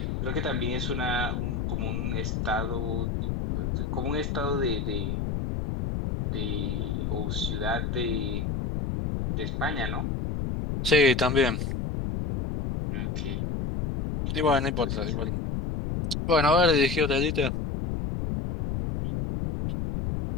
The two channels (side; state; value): left; noise; rumble, 1 dB below the sound